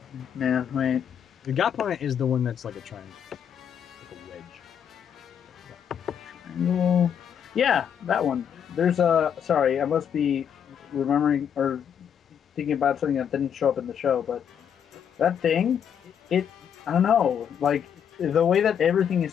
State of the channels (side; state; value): right; quieter; 8.3 dB